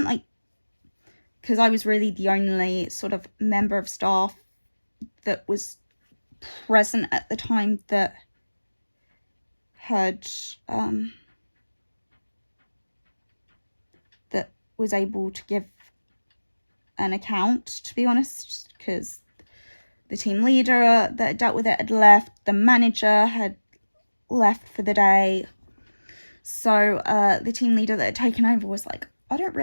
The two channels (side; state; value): both; inverted; correlation -1.00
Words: really the only sort of member of staff that was present at the time that had, that was able to give an account, to be honest, because the team leader that dealt with it had left, the manager had left for the day. So the team leader that had taken over was like, I don't